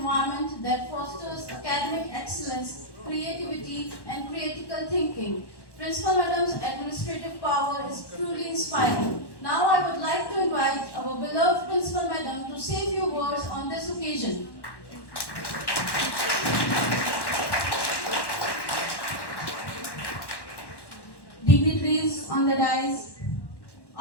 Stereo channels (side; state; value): right; late; 1.1 ms